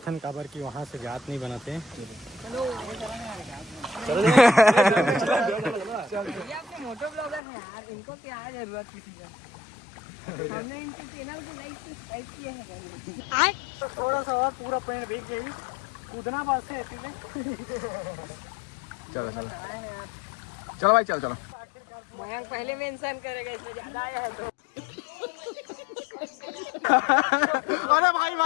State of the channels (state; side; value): drops out; right; at 7.4 s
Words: हैं काबर की वहाँ से जात नहीं बनाते हैं। इनको क्या जरूरत किसी का, हमने इनके चैनल को लाइक सब्सक्राइब किया है। तो थोड़ा सा और पूरा पेड़ भीग गई, कूदना बस है। चलो चलो चलो भाई, चलो चलो। मयंक पहले मेंशन करेगा, इसमें ज्यादा आया है तो। अरे भाई